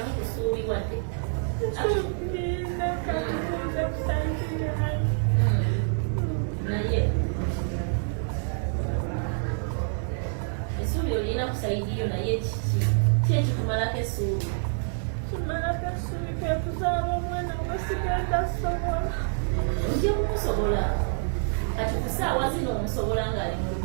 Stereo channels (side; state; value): left; silent; 56 dB below the other